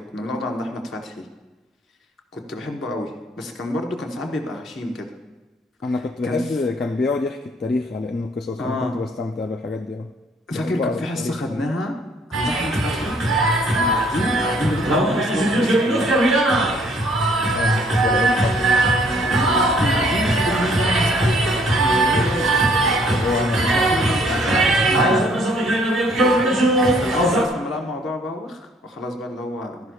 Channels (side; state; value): both; normal; correlation 0.62